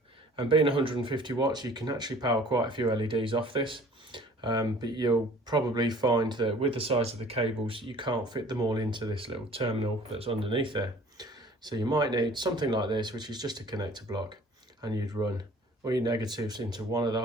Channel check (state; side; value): normal; both; correlation 0.50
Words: And being 150 watts you can actually power quite a few LEDs off this. But you'll probably find that with the size of the cables you can't fit them all into this little terminal that's underneath there. So you might need something like this, which is just a connector block, and you'd run all your negatives into one of the